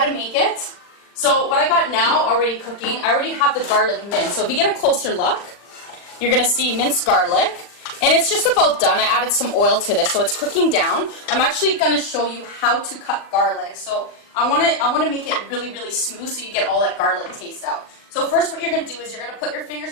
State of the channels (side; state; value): right; late; 40 ms